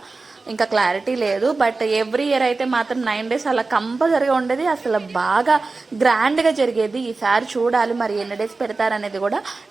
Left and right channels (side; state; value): left; quieter; 3.8 dB